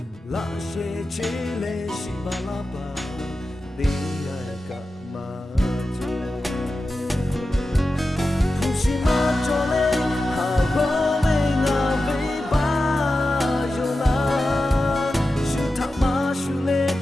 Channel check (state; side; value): normal; both; correlation 0.92